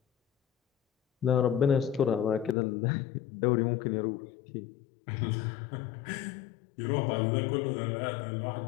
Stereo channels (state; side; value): drops out; right; at 2.6 s